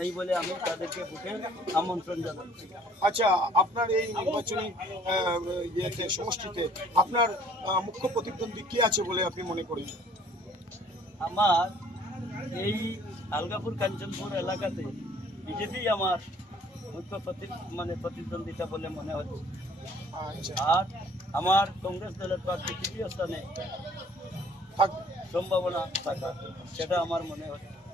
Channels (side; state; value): both; normal; correlation 0.57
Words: এই বলে আমি তাদেরকে ভোটে আমন্ত্রণ জানাচ্ছি। আচ্ছা, আপনার এই নির্বাচনী সমষ্টিতে আপনার মুখ্য প্রতিদ্বন্দ্বী কি আছে বলে আপনি মনে করেন? আমার এই আলগাপুর কাঞ্চনপুর এলাকাতে বিজেপি আমার মুখ্য প্রতিদ্বন্দ্বিতা বলে মনে হচ্ছে। আর আমার কংগ্রেস দলের প্রার্থী তৃতীয় স্থানে সম্ভাবনা থাকা, সেটা আমার মনে হচ্ছে।